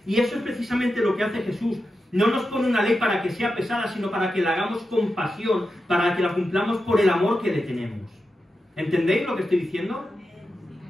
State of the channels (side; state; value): both; normal; correlation 0.90